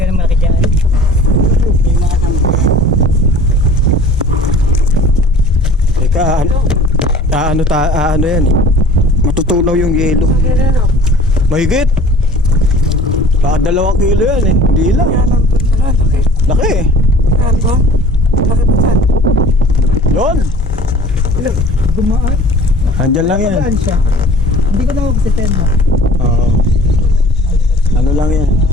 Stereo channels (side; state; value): both; normal; correlation 0.46